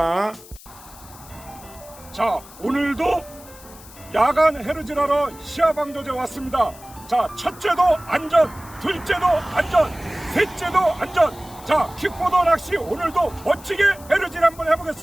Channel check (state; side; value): noise; left; hiss, 20 dB below the sound